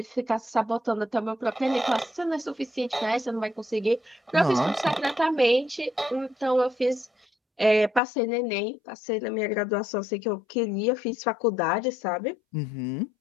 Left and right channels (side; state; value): right; drops out; at 8.0 s